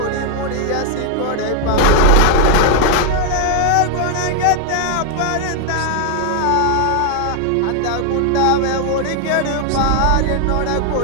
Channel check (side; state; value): both; different; correlation 0.00